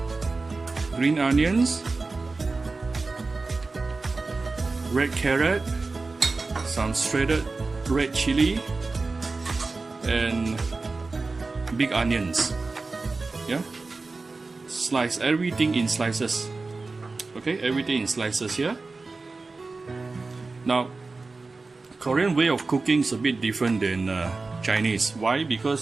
green onions, red carrot, some shredded red chili, and big onions. Yeah, slice everything in slices. Okay, everything in slices here. Now, Korean way of cooking is a bit different than Chinese. Why?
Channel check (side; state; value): left; quieter; 3.8 dB